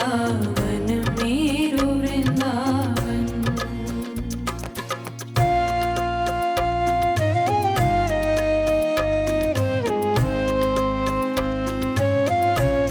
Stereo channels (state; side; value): identical; both; correlation 1.00